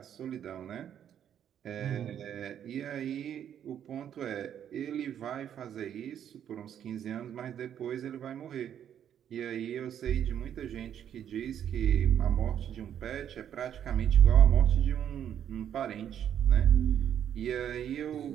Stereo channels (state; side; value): quieter; left; 9.5 dB